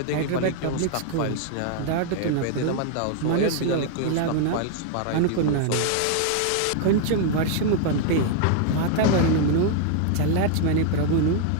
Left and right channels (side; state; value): both; different; correlation 0.00